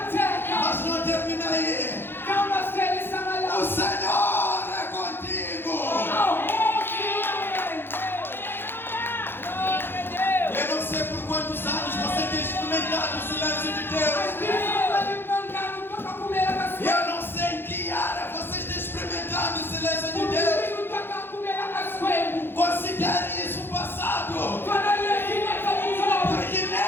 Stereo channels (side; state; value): right; late; 0.10 ms